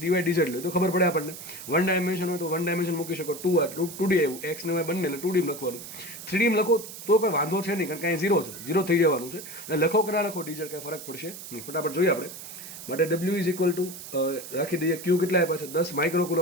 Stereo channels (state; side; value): noise; right; hiss, 12 dB below the sound